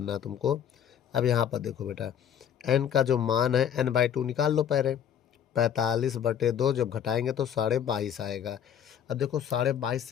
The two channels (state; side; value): quieter; right; 9.0 dB